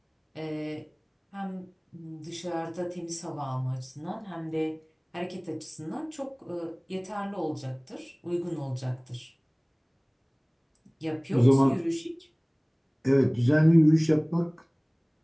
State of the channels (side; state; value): both; identical; correlation 1.00